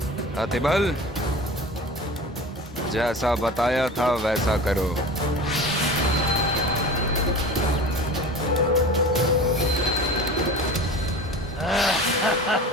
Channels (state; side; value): normal; both; correlation 0.35